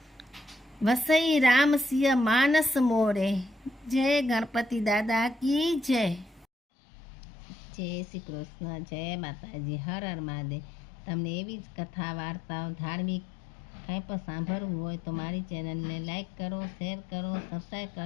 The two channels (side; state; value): right; drops out; at 6.5 s